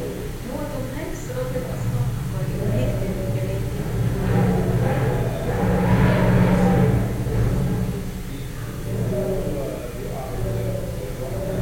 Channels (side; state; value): both; identical; correlation 1.00